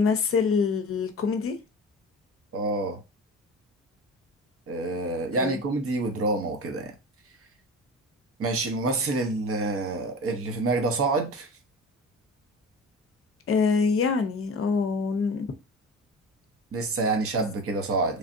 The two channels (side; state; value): both; normal; correlation 0.33